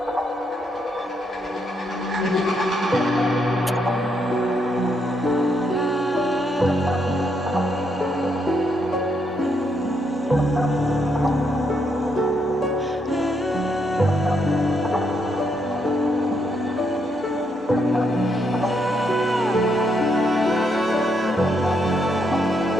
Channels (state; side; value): normal; both; correlation 0.77